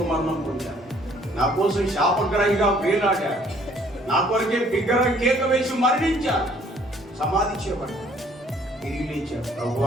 మరణం పొందారు, నా కోసం శాపగ్రహిగా వేలాడారు, నా కొరకే బిగ్గర కేక వేసి మరణించారు, సమాధి చేయబడ్డారు, తిరిగి లేచారు.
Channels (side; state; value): both; normal; correlation 0.60